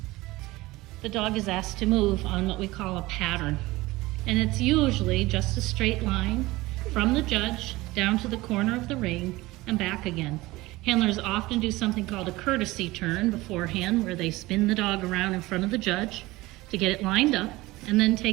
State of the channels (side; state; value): left; quieter; 19.8 dB